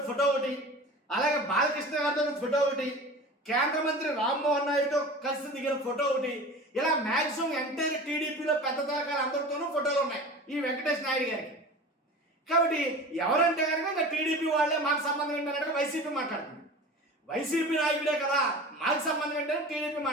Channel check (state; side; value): normal; both; correlation 0.36